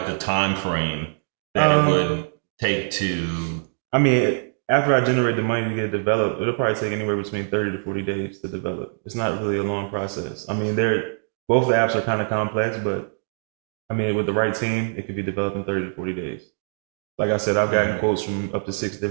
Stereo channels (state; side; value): silent; left; digital silence